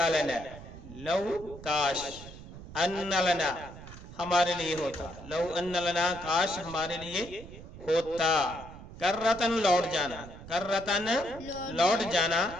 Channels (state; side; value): noise; right; rumble, 15 dB below the sound